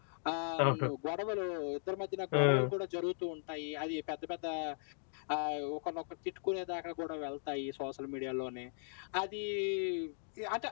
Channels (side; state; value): right; silent; digital silence